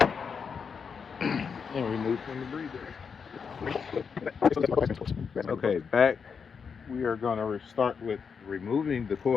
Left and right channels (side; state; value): right; quieter; 6.1 dB